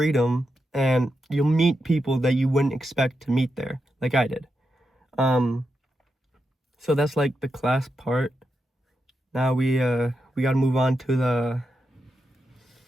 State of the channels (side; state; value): both; normal; correlation 0.87